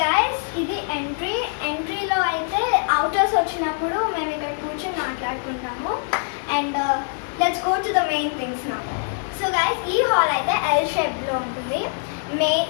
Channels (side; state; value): right; silent; digital silence